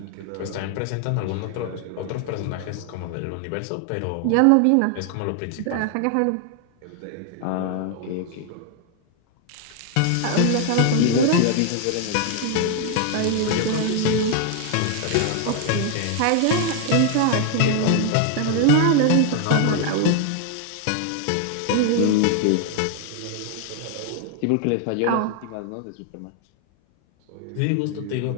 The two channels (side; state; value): both; different; correlation 0.00